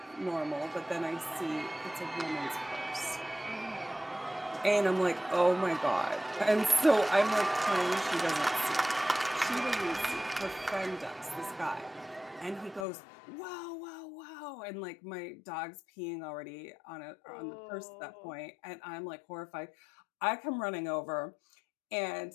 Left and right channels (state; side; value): drops out; right; at 12.9 s